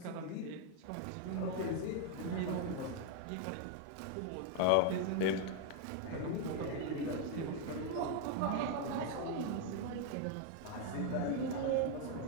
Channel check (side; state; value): both; different; correlation 0.00